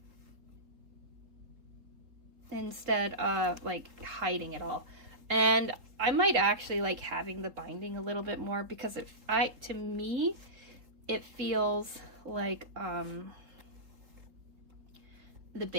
instead of like hiding it all. And I might actually like having the binding a little bit more, because to me it feels like the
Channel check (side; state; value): left; late; 3.9 ms